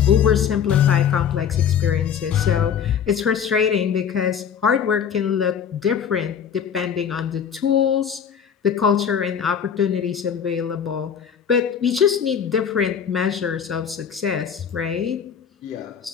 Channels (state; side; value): quieter; right; 7.8 dB